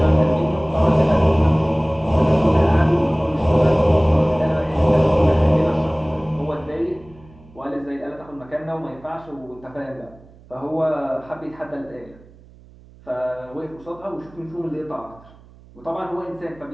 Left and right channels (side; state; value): right; noise; hum, 24 dB below the sound